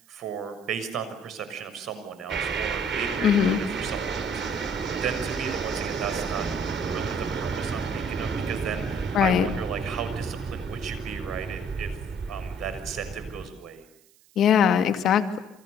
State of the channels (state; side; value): noise; right; hiss, 29 dB below the sound